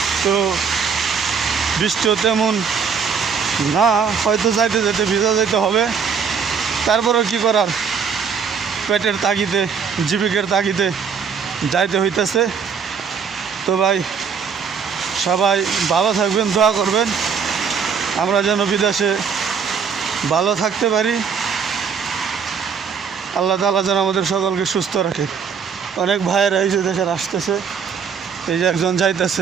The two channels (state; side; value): quieter; left; 6.4 dB